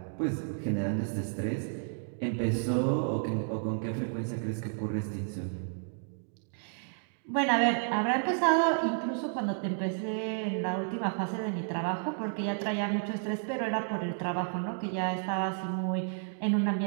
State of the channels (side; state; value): left; silent; digital silence